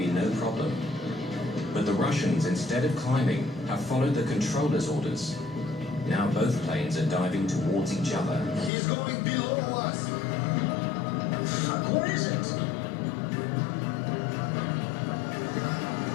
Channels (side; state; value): right; drops out; at 8.7 s